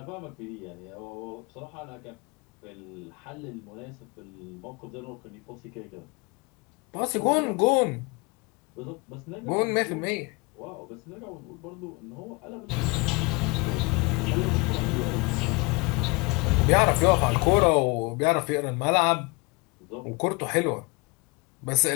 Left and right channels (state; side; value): quieter; right; 27.8 dB